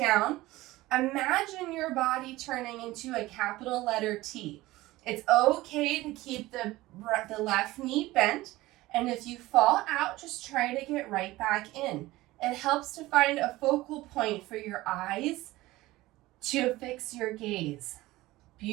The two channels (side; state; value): left; quieter; 18.3 dB